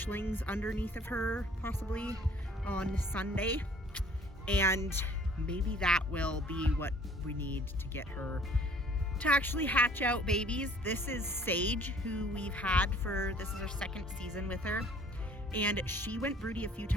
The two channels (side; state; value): both; normal; correlation 0.55